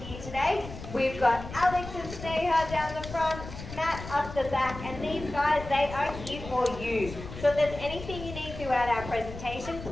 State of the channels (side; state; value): left; noise; rumble, 11 dB below the sound